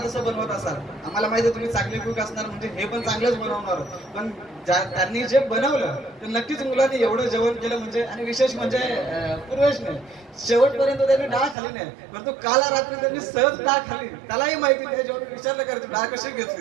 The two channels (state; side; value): drops out; left; at 11.6 s